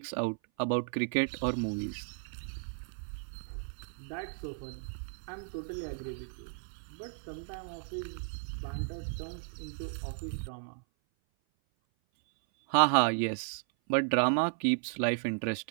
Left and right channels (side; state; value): left; silent; 55 dB below the other